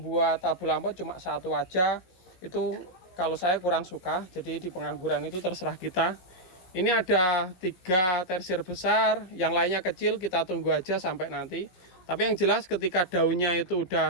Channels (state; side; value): late; right; 17 ms